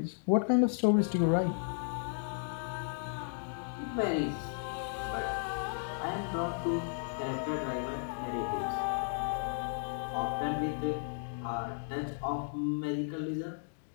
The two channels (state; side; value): silent; right; digital silence